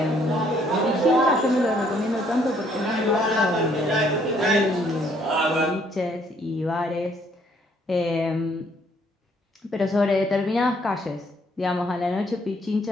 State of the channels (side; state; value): both; normal; correlation 0.66